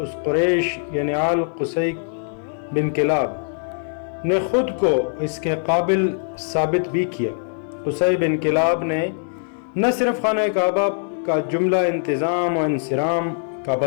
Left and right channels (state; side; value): silent; right; digital silence